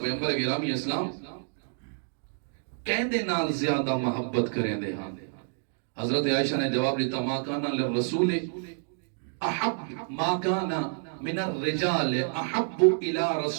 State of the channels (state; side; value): silent; left; 59 dB below the other